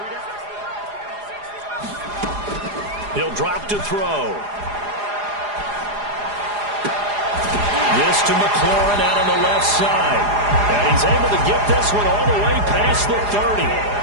He'll drop to throw. This to McLaurin out on the left side. And he's able to get this one all the way past the 30.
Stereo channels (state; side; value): late; left; 4.9 ms